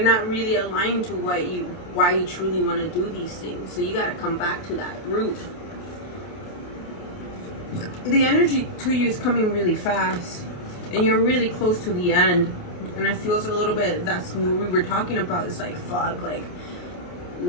not really aligned to why you truly want to do these things. So you got to come back to that root. The energy to you is coming really fast, and you're really close to the end. And it feels a little bit, that's what we were talking about. It's like, fuck, like,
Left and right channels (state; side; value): late; right; 28 ms